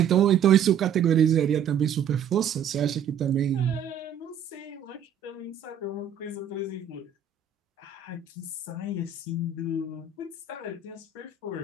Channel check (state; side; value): quieter; left; 7.6 dB